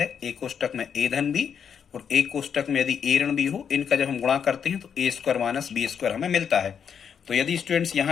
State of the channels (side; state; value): right; quieter; 7.5 dB